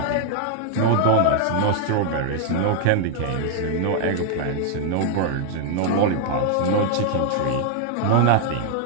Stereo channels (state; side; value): different; both; correlation 0.00